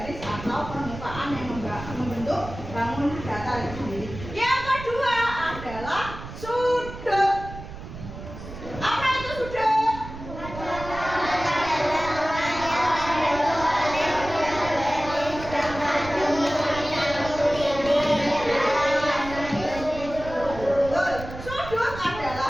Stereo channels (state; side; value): noise; right; rumble, 12 dB below the sound